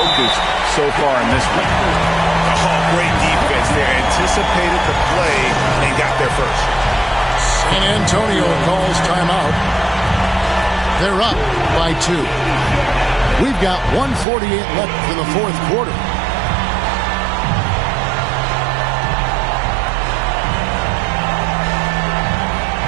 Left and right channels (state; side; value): drops out; left; at 14.2 s